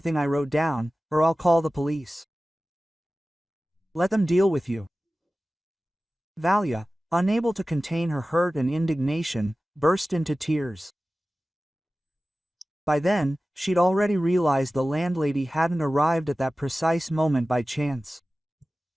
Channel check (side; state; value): both; normal; correlation 0.96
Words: I wrote down, or I'll call the police. Let them deal with you." Valia, unable to contain her hurt and indignation, burst into tears. By then, she'd already realized the landlady hadn't arrived at that precise moment by chance.